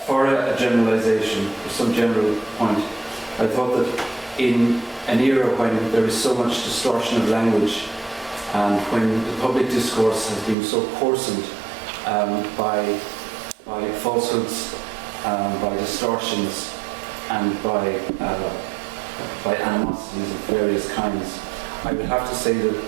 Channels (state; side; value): drops out; left; at 10.6 s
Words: a generalisation, for some general point, I thought that in an era when there is so much distortion of language and when the public discourse has been so coarsened by falsehoods, by distortions, and by animosities of various kinds, I would have to say that